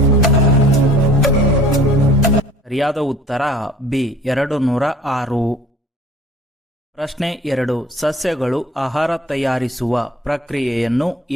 ಸರಿಯಾದ ಉತ್ತರ ಬಿ 206. ಪ್ರಶ್ನೆ 2. ಸಸ್ಯಗಳು ಆಹಾರ ತಯಾರಿಸುವ ಪ್ರಕ್ರಿಯೆಯನ್ನು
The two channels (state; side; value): normal; both; correlation 0.49